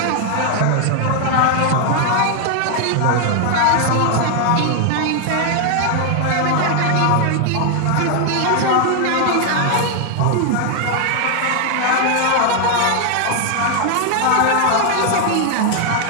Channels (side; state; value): both; different; correlation 0.00